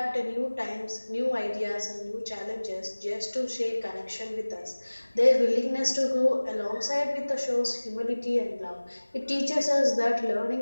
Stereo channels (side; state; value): both; inverted; correlation -1.00